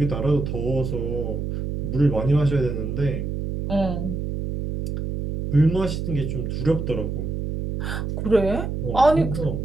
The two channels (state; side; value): noise; right; hum, 3 dB below the sound